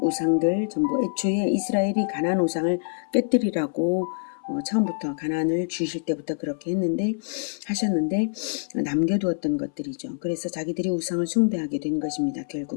우상들 전부 애초에 이스라엘이 가나안 우상을 깨뜨리라고 처음부터 가나안을 주실 때부터 그렇게 하셨는데 남겨두었던 것들이죠. 그래서 자기들이 우상을 숭배하게 된 것입니다.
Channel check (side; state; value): right; silent; 59 dB below the other